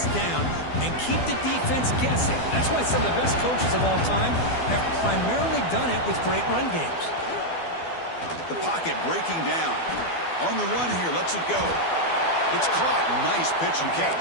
down and keep the defense guessing. That's why some of the best coaches of all time have primarily done it with great run games. The pocket breaking down. On the run here, lets it go. It's caught. Nice pitch and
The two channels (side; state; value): right; late; 12 ms